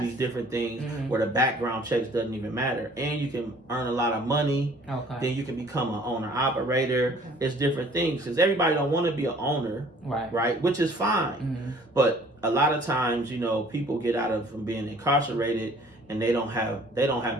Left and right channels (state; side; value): normal; both; correlation 0.54